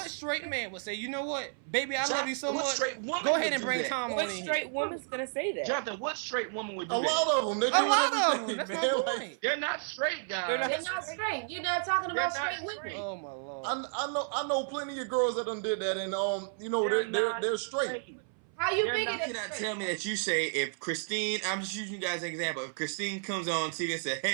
straight man would say, you know what, baby, I love you so much. Go ahead and bring Tom on in here. What straight woman's gonna say that? Jonathan, what straight woman would do that? A lot of them. That's my point. They're not straight, guys. They're not straight. You're not talking about straight women. Oh my lord. I know plenty of girls that done did that, and they're straight. How you figure that? You cannot tell me that you say if Christine, I'm just using you guys as an example. If Christine comes on TV and says,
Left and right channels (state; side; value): silent; left; 57 dB below the other